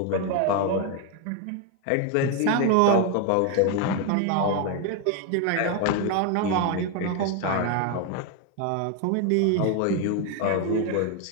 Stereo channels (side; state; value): both; different; correlation 0.01